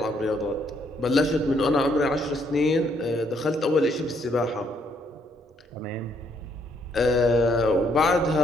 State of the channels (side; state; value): both; normal; correlation 0.70